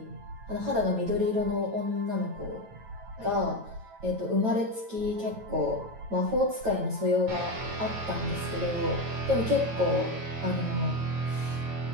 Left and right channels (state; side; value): late; left; 9.1 ms